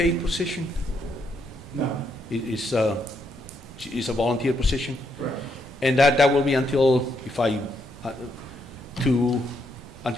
position? No. It's a volunteer position? Correct. And that will be until, until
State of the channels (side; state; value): both; normal; correlation 0.77